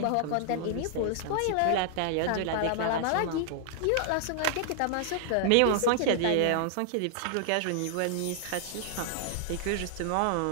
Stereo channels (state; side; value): different; both; correlation -0.01